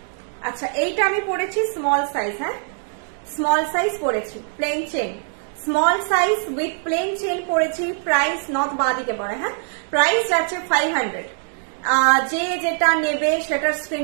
আচ্ছা এইটা আমি পড়েছি স্মল সাইজ, হ্যাঁ স্মল সাইজ পড়েছি, plain chain, small size with plain chain পড়েছি। প্রাইস নথ বাঁ দিকে পড়ে, হ্যাঁ প্রাইস যাচ্ছে 500। যে যেটা নেবে সেটার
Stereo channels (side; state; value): left; silent; 64 dB below the other